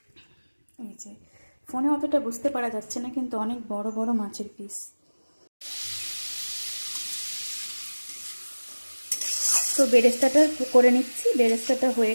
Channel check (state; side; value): inverted; both; correlation -1.00